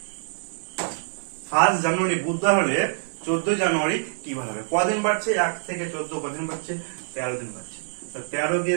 1 জানুয়ারি বুধবার হলে 14 জানুয়ারি কি বার হবে? কদিন বাড়ছে? 1 থেকে 14 কদিন বাড়ছে? 13 দিন বাড়ছে। তো 13 কে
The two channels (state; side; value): silent; left; digital silence